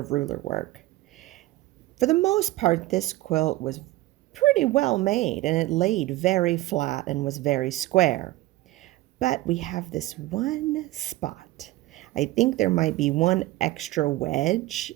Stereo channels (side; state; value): left; quieter; 17.6 dB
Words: ruler work. For the most part, this quilt was pretty well made and it laid very flat and was very square. But we have this one spot. I think there might be one extra wedge